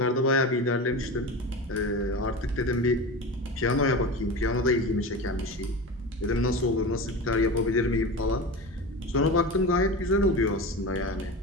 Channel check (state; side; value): normal; both; correlation 0.27